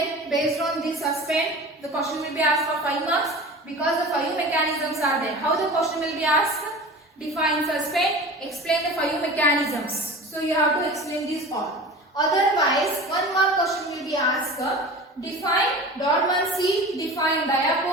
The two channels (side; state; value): both; normal; correlation 0.36